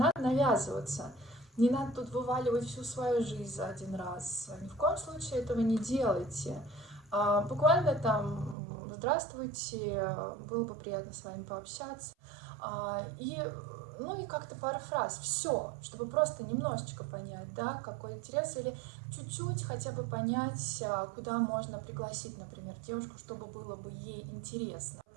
навязываться. Не надо тут вываливать всю свою жизнь за один раз. Ни в коем случае этого не делайте. Буквально там здравствуйте, было бы приятно с вами пообщаться. И как-то пара фраз, все, чтобы просто немножечко понять, да, какой интерес, или чуть-чуть хотя бы понять, куда можно пригласить, например, девушку, чтобы было бы ей интересно.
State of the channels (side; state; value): left; drops out; at 8.6 s